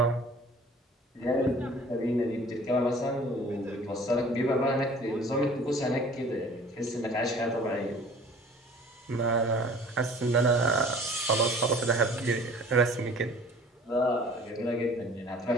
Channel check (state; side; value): normal; both; correlation 0.48